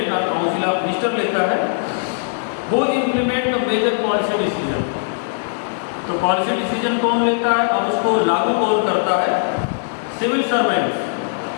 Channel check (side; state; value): right; silent; digital silence